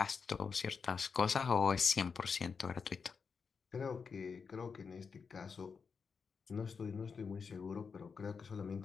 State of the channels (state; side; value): quieter; right; 5.6 dB